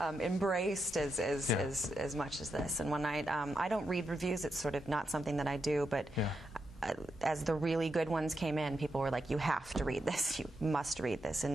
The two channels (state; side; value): normal; both; correlation 0.85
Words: embraced as much as this. And when I don't read reviews, it's sort of not something that I do, but. As the really good ones came in, people were like, you have to read this, you must read this